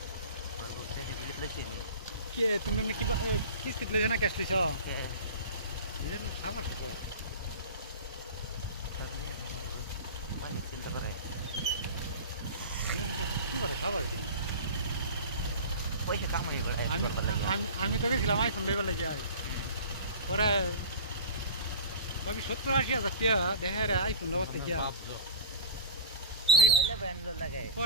के तुमने किस कितले जना कैश लिसा इधर ना साबर है पानी चिंता करे की बारे साबर दी पैसे काम नहीं करे आमी तो के खिलाफ आईफोन लेवल लग जाए और अभी 70-80 हजार क्या देह रहा आईफोन लौट क्या ले बैंड लगे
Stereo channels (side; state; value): both; inverted; correlation -0.34